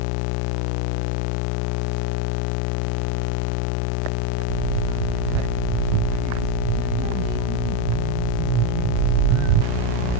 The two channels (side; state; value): both; different; correlation 0.03